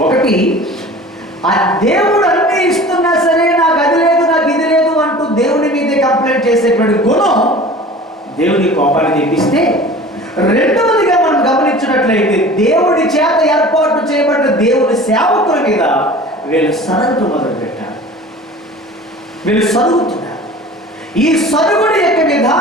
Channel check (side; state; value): both; normal; correlation 0.41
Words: ఒకటి, ఆ దేవుడు అన్ని ఇస్తున్నా సరే నాకు అది లేదు, నాకు ఇది లేదు అంటూ దేవుని మీదే కంప్లైంట్ చేసేటువంటి గుణం దేవుని కోపాన్ని తెప్పిస్తే, రెండవదిగా మనం గమనించినట్లయితే దేవుడి చేత ఏర్పాటు చేయబడిన దేవుని సేవకుల మీద వీళ్ళు సరగటం మొదలుపెట్టారు. వీళ్ళు సరుగుతున్నారు. ఈ సరుగుడి యొక్క